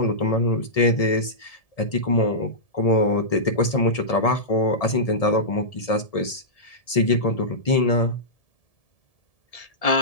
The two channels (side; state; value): right; late; 1.7 ms